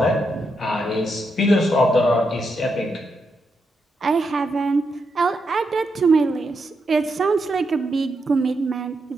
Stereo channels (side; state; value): both; normal; correlation 0.83